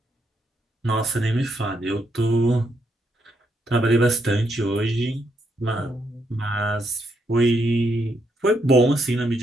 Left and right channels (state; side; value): normal; both; correlation 0.77